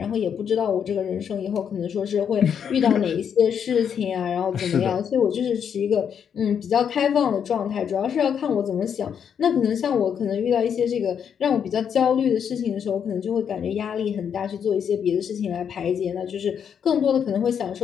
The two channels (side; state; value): right; quieter; 7.8 dB